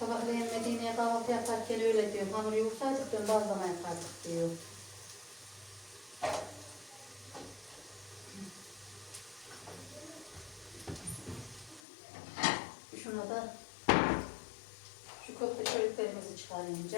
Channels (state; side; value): drops out; right; at 11.8 s